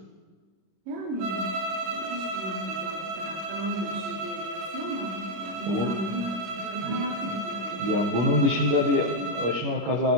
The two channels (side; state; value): left; late; 25 ms